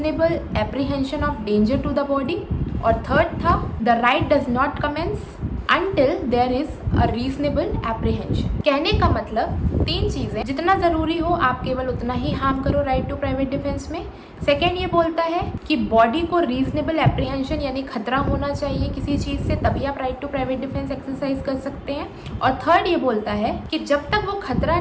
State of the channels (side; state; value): both; identical; correlation 1.00